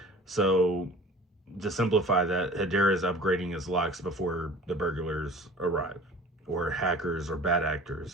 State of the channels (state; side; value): normal; both; correlation 0.43